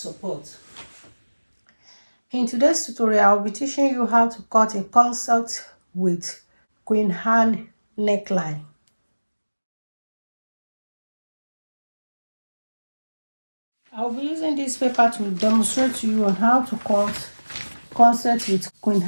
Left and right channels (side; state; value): both; inverted; correlation -1.00